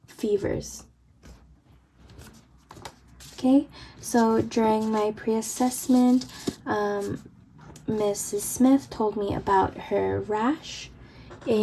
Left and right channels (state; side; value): identical; both; correlation 1.00